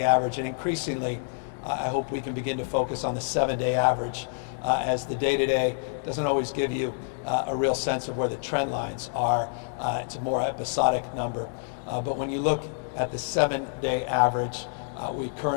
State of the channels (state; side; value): silent; right; digital silence